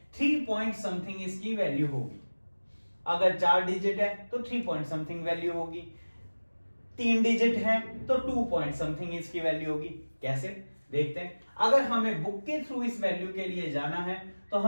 3 पॉइंट समथिंग इसकी वैल्यू होगी। अगर 4 डिजिट है तो 3 पॉइंट समथिंग वैल्यू होगी, 3 डिजिट है तो 2 पॉइंट समथिंग इसकी वैल्यू होगी। कैसे देखते हैं। अगर हमें बुक के थ्रू इस वैल्यू के लिए जाना है तो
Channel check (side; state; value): both; inverted; correlation -1.00